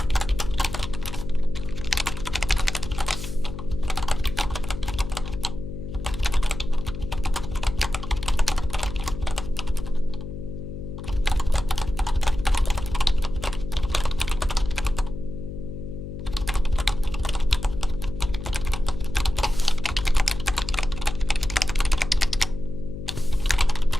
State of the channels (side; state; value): left; noise; hum, 8 dB below the sound